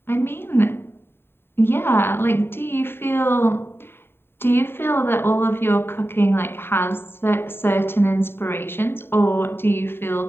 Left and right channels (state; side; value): late; right; 0.11 ms